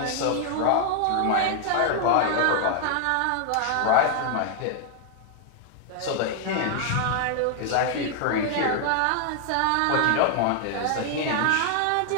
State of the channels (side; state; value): both; different; correlation 0.00